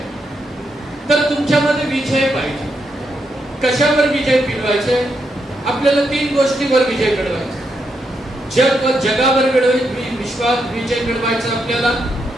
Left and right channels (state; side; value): normal; both; correlation 0.81